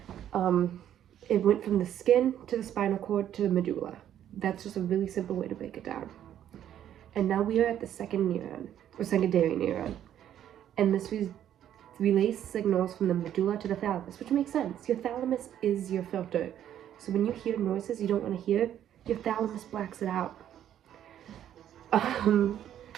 It went from the skin to the spinal cord to the medulla. That's just a really simple way to break it down. And now we are at the second neuron, or secondary neuron. And this relays signals from the medulla to the thalamus, which makes sense. Your thalamus is your filter. So when you hear noises you don't want to hear, your thalamus blacks it out. And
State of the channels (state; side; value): quieter; left; 10.7 dB